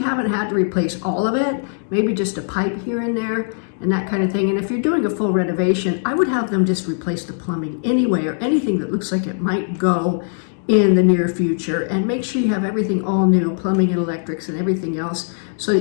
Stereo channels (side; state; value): right; silent; digital silence